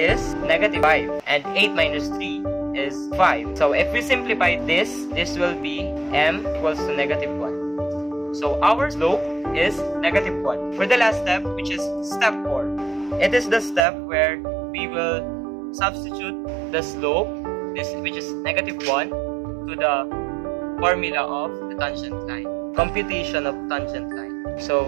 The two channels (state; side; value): drops out; left; at 13.9 s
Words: negative 5, and 8 minus 3 is 5. So if we simplify this will be m equals to negative 1. So our slope is negative 1. For the last step, which is step 4, it is the step where we will substitute the slope, which is negative 1, to the formula of the tangent line. Computation of tangent line. So